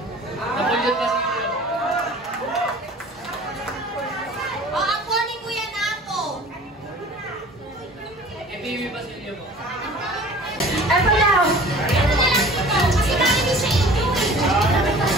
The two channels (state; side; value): normal; both; correlation 0.45